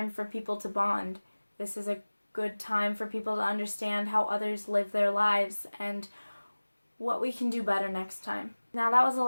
for people to bond. This is a good time for people to understand how others live their lives and what we can do better next time. Now, that was a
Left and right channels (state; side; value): inverted; both; correlation -1.00